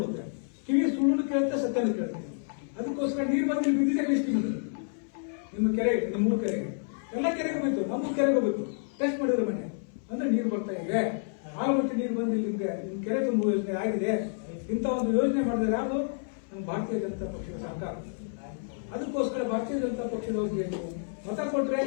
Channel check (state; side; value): silent; right; 58 dB below the other